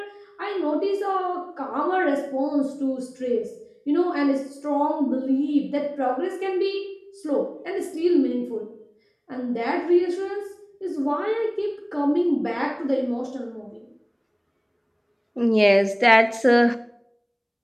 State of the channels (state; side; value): identical; both; correlation 1.00